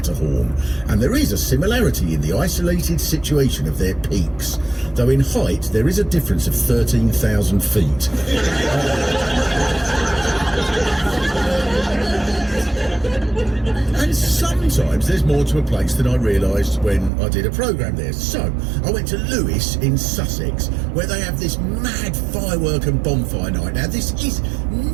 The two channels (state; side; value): drops out; left; at 17.1 s